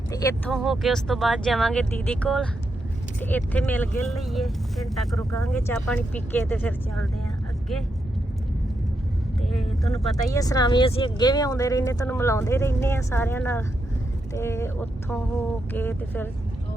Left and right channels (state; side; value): normal; both; correlation 0.83